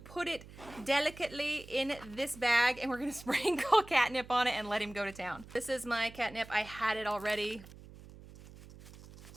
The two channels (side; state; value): right; noise; hum, 18 dB below the sound